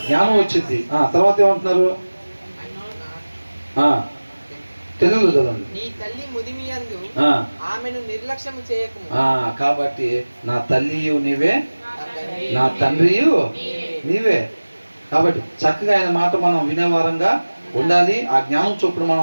జ్ఞానం వచ్చింది. తర్వాత ఏమంటున్నారు? తెలుగులో చదవండి. నీ తల్లి ముదిమియందు ఆమెను నిర్లక్ష్యము చేయకుము. కాబట్టి నా తల్లియు నీవే, నా తండ్రియు నీవే. కాబట్టి చక్కగా ఆయన మాట మనం వినేవారంగా ఉండాలి. ఆ జ్ఞానం చొప్పున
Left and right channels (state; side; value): inverted; both; correlation -1.00